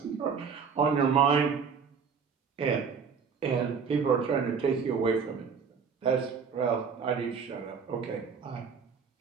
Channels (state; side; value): quieter; left; 6.1 dB